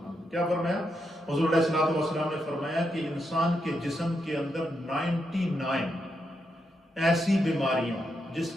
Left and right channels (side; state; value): both; normal; correlation 0.82